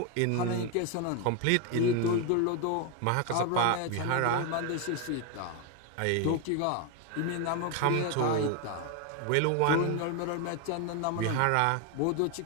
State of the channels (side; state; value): both; different; correlation 0.01